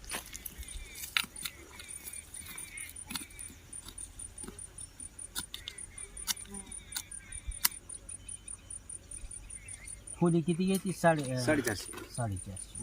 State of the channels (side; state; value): both; identical; correlation 1.00